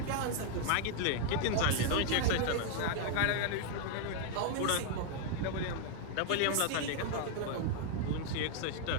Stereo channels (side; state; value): both; different; correlation 0.00